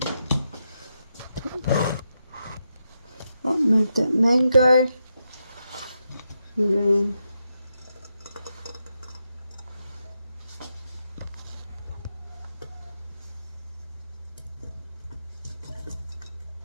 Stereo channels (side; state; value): both; inverted; correlation -0.84